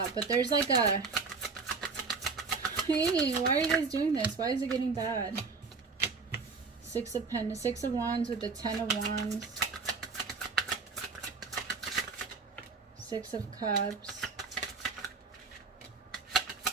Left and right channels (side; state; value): left; quieter; 4.6 dB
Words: but there's like a, hey, why are you guys doing this? Why is it getting bad? 6 of Wands with the 10 of Wands. 6 of Cups.